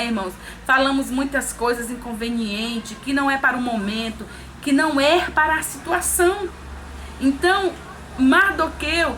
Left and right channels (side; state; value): both; identical; correlation 1.00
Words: irmãos? Falamos muitas coisas inconvenientes, que não é para o momento, que não é para a situação. Então, Mardoqueu